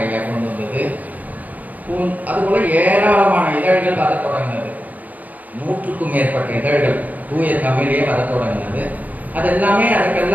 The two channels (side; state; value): left; late; 0.078 ms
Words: ஐயா கொண்டு வந்தது. அதுபோல ஏராளமான இதழ்கள் வர தொடங்கினது. 100க்கும் மேற்பட்ட இதழ்கள் தூய தமிழே வர தொடங்கினது.